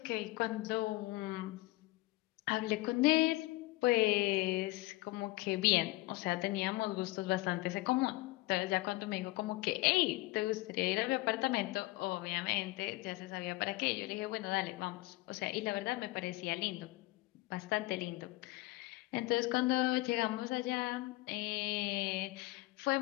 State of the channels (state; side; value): quieter; right; 20.4 dB